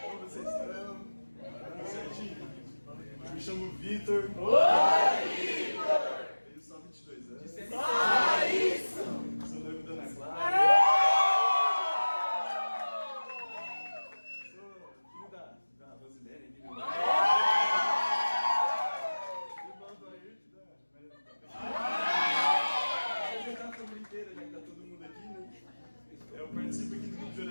Como vocês estão? Tudo certinho? Eu me chamo Vitor. Oi, Vitor! Tenho só 22 anos. Isso! Sou noivo da Ana Clara. Sou filho da Rosilene aqui do lado. Irmão do Ayrton da Maria. Vou apresentar a família inteira, já que tá todo mundo aqui, né? Eu participo aqui do grupo de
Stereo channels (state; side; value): inverted; both; correlation -1.00